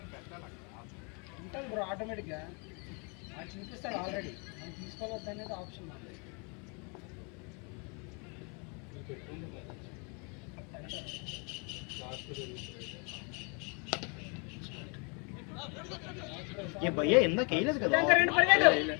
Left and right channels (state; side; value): quieter; right; 34.2 dB